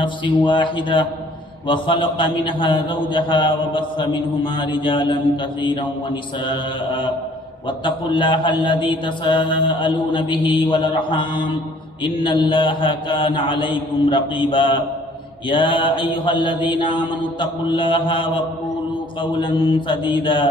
واحدة وخلق منها زوجها وبث منهما رجالا كثيرا ونساء واتقوا الله الذي تساءلون به والأرحام إن الله كان عليكم رقيبا يا أيها الذين آمنوا اتقوا الله وقولوا قولا سديدا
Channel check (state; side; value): normal; both; correlation 0.57